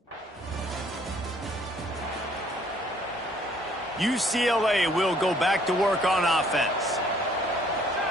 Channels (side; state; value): both; normal; correlation 0.61